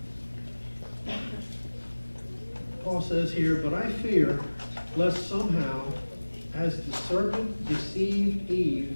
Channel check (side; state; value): both; inverted; correlation -1.00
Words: Paul says here, "But I fear lest somehow, as the serpent deceived